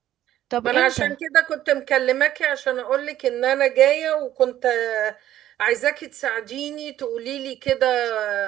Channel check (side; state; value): left; quieter; 12.6 dB